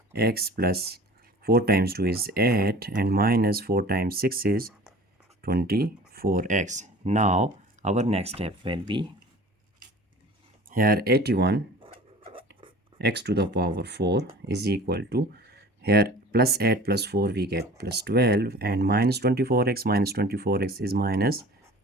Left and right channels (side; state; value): both; normal; correlation 0.43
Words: plus 4 times 2 is 8, and minus 4 times 6 is 24x. Now our next step will be, here 81 x to the power 4 is equal to, here plus 8 plus 4 we get plus 12, and minus 24x is minus